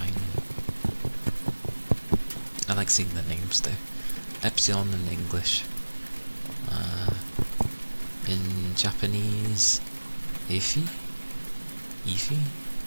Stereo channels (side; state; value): both; inverted; correlation -1.00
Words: I like seeing the names though. Epsilon in English. In Japanese, Ify? Ify?